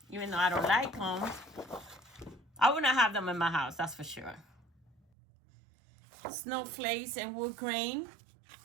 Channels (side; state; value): left; drops out; at 5.0 s